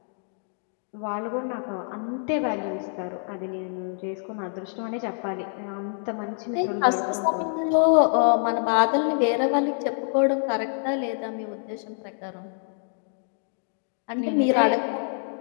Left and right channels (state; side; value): silent; right; 61 dB below the other